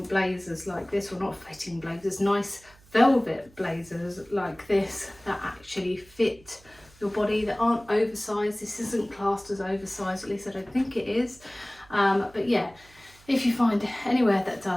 blazers like this, or not fitting blazers, nice velvet blazers like this that actually fit your body, that aren't oversized. This isn't classed as oversized, at least I don't think it is. But yeah, if you find anywhere that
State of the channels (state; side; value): noise; right; hum, 27 dB below the sound